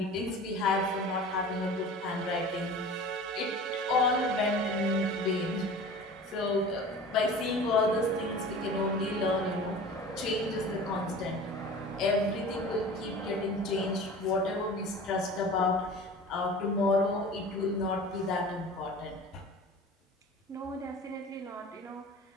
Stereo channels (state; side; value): normal; both; correlation 0.39